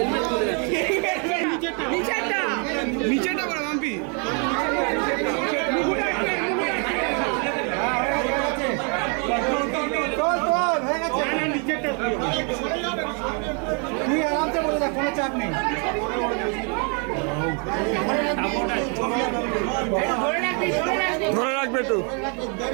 নিচেটা বড় মাম্পি তুই আরামসে বলে যা, কোনো চাপ নেই। ধরে রাখবে একটু।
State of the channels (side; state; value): left; quieter; 37.3 dB